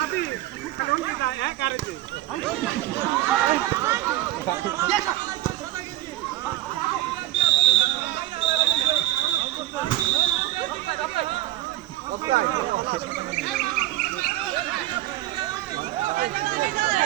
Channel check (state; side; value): quieter; left; 15.5 dB